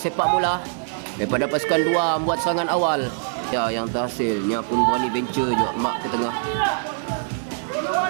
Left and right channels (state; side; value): silent; left; digital silence